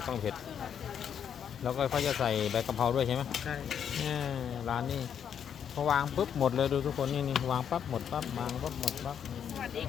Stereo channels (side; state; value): right; quieter; 8.3 dB